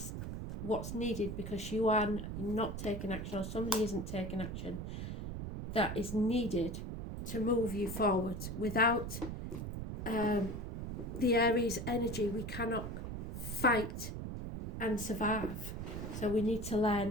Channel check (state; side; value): noise; right; rumble, 6 dB below the sound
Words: what's needed, because you are not taking action, or somebody isn't taking action. That is needed to move you forward. Without the Aries energy, we cannot fight and survive. So we need to